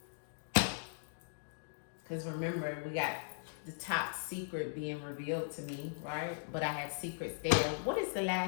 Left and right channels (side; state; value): right; silent; digital silence